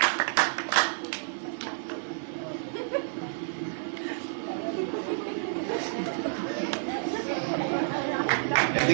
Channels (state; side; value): silent; left; 58 dB below the other